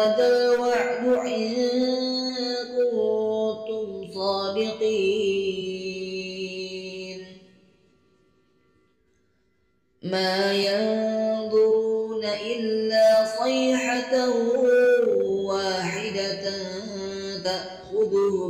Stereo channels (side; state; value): both; identical; correlation 1.00